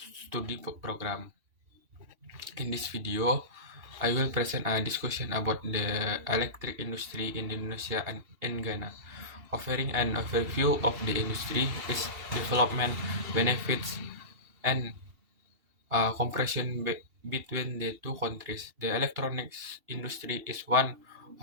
Study Program. In this video, I will present a discussion about the electric industry in Indonesia and in Ghana, offering an overview of the industry, its development, benefits, and comparison between the two countries. The electronics industry is one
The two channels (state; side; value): late; left; 2.7 ms